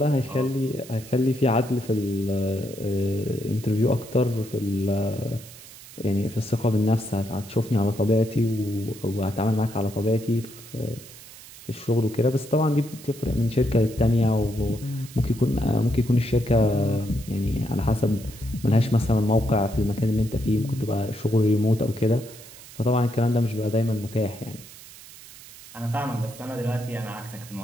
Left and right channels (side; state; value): right; noise; hiss, 18 dB below the sound